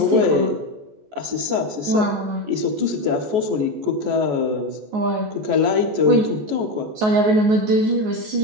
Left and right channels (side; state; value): left; late; 14 ms